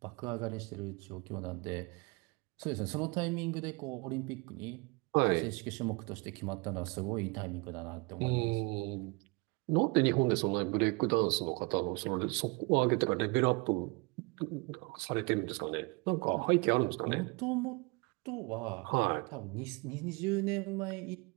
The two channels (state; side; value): quieter; left; 27.7 dB